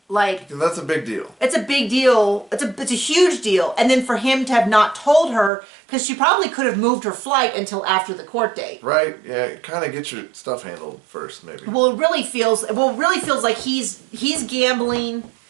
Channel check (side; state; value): left; drops out; at 5.5 s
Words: that's a big deal. It's a big deal. It's a huge deal. And then for him to have not told her, because she probably could have moved her flight until after the court date. Right. Yeah. Kind of get your stuff handled first, maybe. Well, it really feels like he's gambling